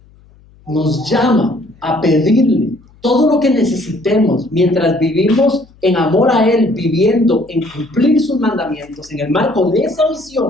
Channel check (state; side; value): noise; left; hum, 28 dB below the sound